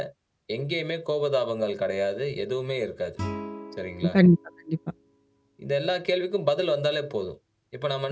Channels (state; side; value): identical; both; correlation 1.00